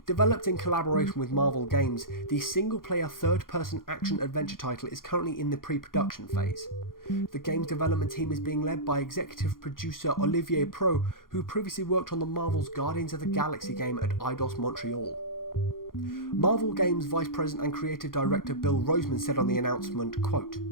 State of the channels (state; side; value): late; right; 0.91 ms